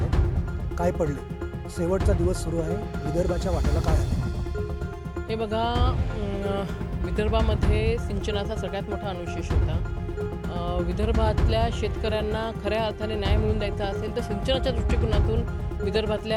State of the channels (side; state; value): both; identical; correlation 1.00